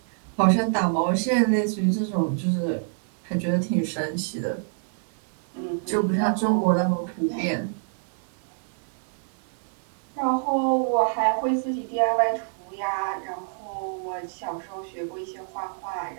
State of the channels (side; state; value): left; silent; 58 dB below the other